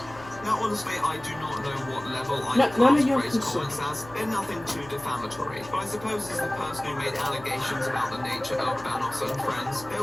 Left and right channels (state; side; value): noise; left; hum, 19 dB below the sound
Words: Now, honestly, I do not know what level I None of your class Gray's concern. comments as. They're nothing too defamatory. But I suppose as the person who made allegations about the nature of Banos and friends,